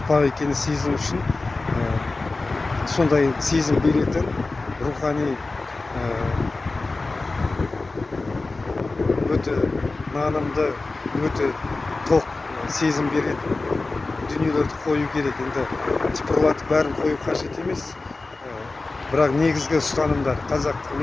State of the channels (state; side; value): quieter; right; 3.5 dB